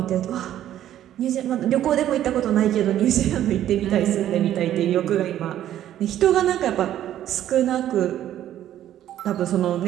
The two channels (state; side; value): quieter; left; 11.8 dB